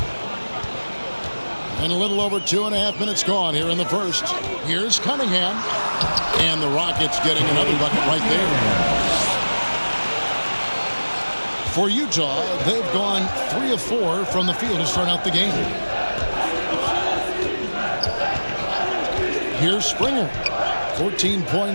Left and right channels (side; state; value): both; inverted; correlation -1.00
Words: And a little over 2.5 minutes gone here in the first. Here's Cunningham. And the Rockets getting another bucket right there. For Utah, they've gone 3 of 4 from the field to start out the game. Here's Springer. 14